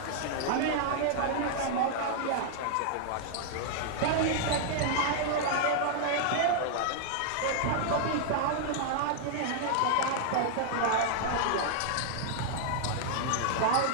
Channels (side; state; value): both; different; correlation -0.01